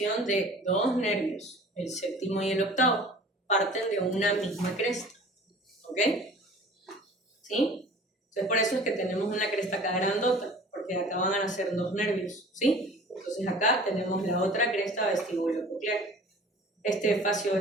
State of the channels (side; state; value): both; normal; correlation 0.45